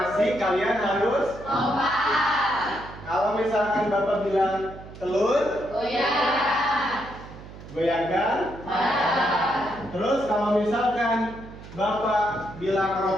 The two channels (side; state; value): right; noise; hum, 16 dB below the sound